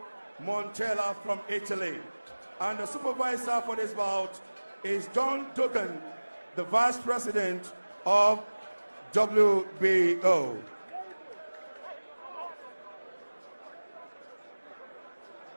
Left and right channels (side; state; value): both; inverted; correlation -1.00